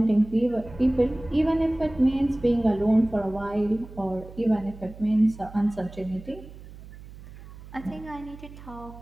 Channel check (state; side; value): noise; right; hum, 17 dB below the sound